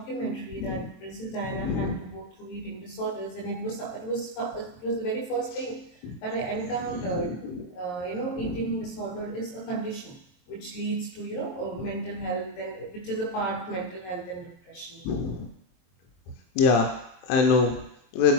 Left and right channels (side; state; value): right; late; 22 ms